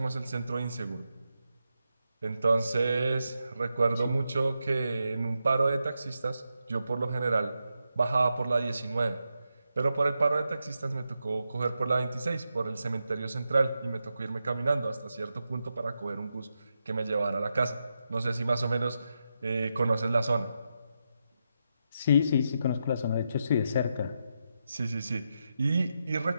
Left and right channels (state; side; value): inverted; both; correlation -0.86